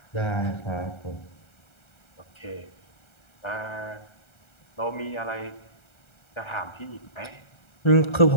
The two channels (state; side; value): late; right; 1.3 ms